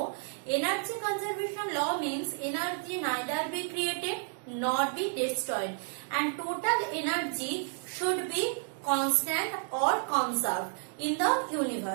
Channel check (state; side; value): silent; left; 56 dB below the other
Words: energy conservation law means energy neither be created nor be destroyed, and total energy should be constant or conserved in the